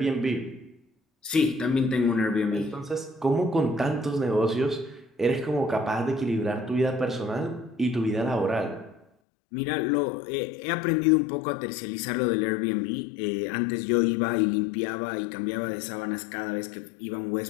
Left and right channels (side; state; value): right; drops out; at 9.1 s